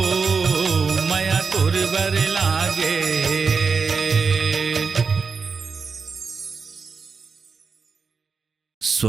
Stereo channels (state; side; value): quieter; left; 5.1 dB